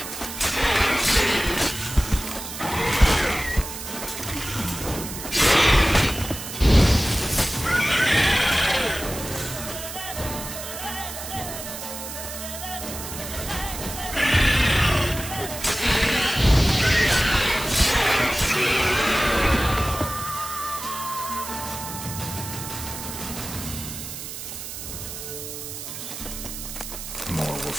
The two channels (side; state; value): right; noise; hiss, 9 dB below the sound